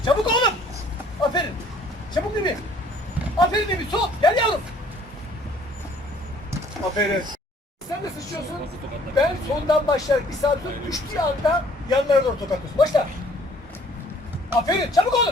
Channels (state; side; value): normal; both; correlation 0.58